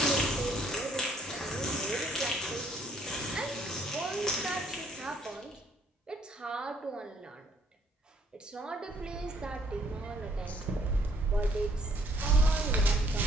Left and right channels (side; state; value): both; normal; correlation 0.65